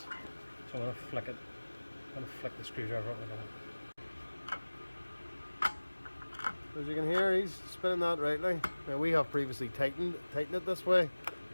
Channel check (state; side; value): inverted; both; correlation -1.00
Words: I'm going to flick it. I'm going to flick the screwdriver up with it. As you can hear, he's spinning that rightly. Now we have previously tightened it this way